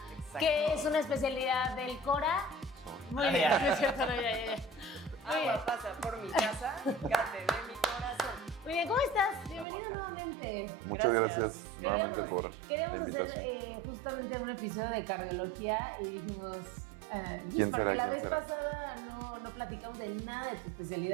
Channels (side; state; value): left; drops out; at 9.7 s